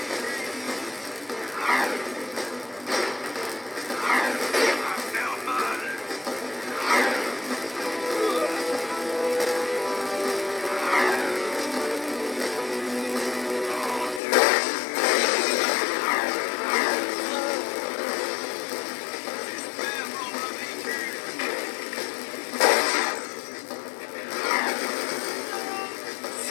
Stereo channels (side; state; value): right; drops out; at 14.2 s